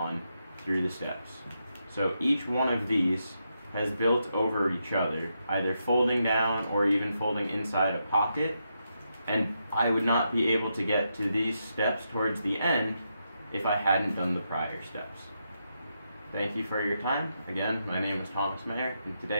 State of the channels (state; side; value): inverted; both; correlation -0.83